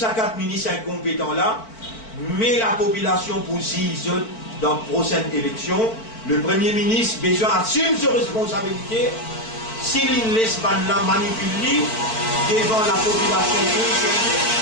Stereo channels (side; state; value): right; late; 4.5 ms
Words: 4 ministres incompétents là, mais la population pour 6 autres dans la prochaine élection. Le Premier ministre besoin assume ses responsabilités s'il ne laisse pas manipuler devant la population concernée,